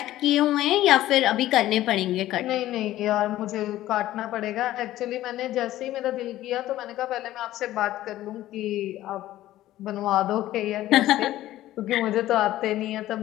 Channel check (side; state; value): right; quieter; 14.6 dB